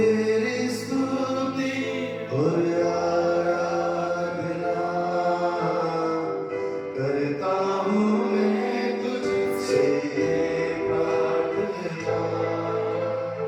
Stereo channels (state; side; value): identical; both; correlation 1.00